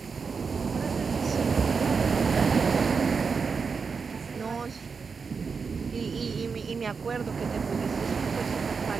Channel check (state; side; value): quieter; left; 5.3 dB